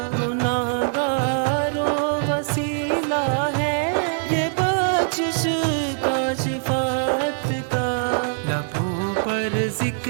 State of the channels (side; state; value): left; silent; 61 dB below the other